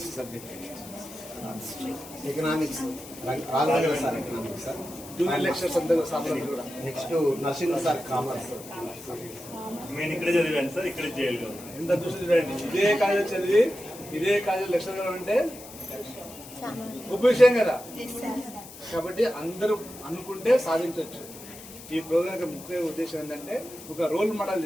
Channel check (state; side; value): noise; left; hiss, 16 dB below the sound